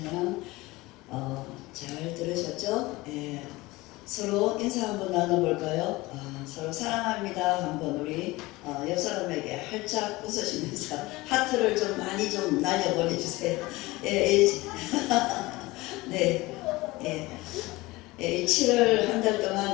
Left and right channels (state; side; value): quieter; right; 20.8 dB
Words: 잘 들으셨죠? 서로 인사 한번 나눠볼까요? 서로 사랑합니다 한번 우리 옆 사람에게 활짝 웃으시면서 하트를 좀 많이 좀 날려보내주세요. 네, 7월 한 달